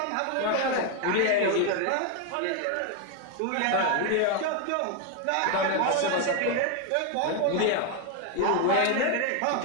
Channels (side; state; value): both; different; correlation 0.01